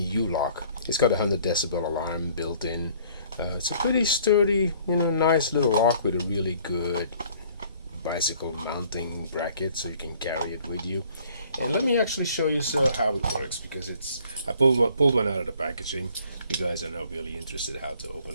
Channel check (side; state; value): both; inverted; correlation -0.57